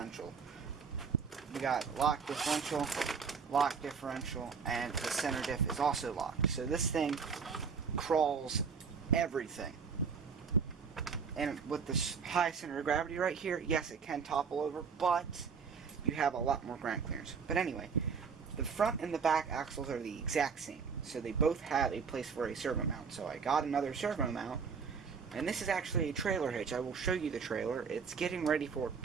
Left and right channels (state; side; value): quieter; left; 5.8 dB